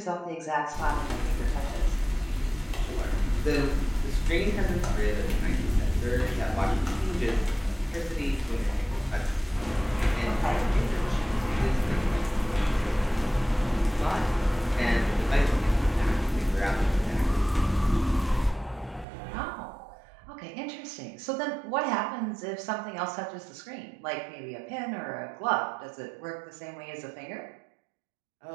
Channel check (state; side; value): drops out; left; at 19.1 s